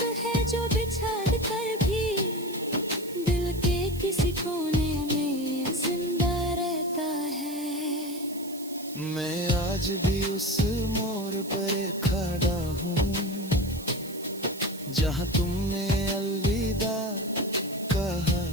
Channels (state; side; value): noise; right; hiss, 16 dB below the sound